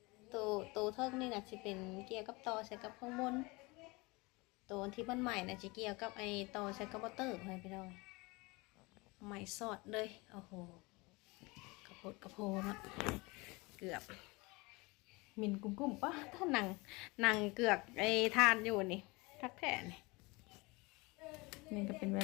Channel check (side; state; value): right; quieter; 25.0 dB